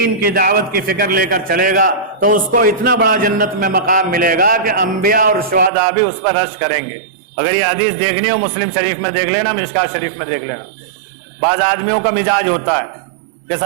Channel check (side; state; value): left; drops out; at 5.7 s